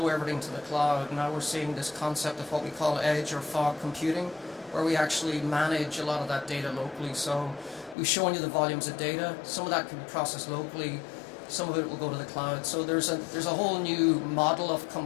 everything to the cloud. Now we're seeing this concept of what we call edge or fog computing, where we actually manage a lot of that data locally. So we've shown you the volumes of data. Some of that can be processed locally, some of it will go to the cloud. So there's a whole new model of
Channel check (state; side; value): drops out; right; at 8.0 s